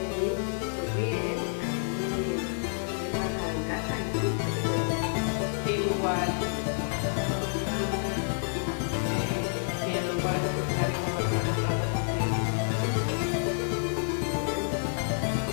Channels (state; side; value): silent; right; digital silence